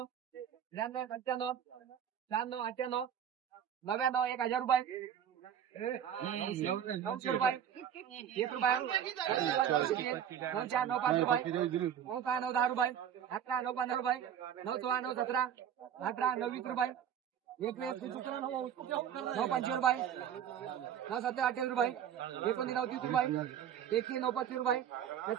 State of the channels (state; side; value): quieter; left; 9.2 dB